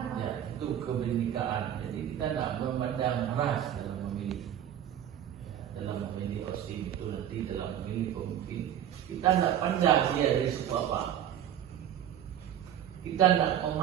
Ya, itu kebinekaan. Jadi kita tidak memandang ras dalam memilih. Ya, dalam memilih osim itu nanti dalam memilih pemimpin. Kita tidak pandang dia dari suku apa. Kita tidak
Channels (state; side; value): quieter; left; 10.5 dB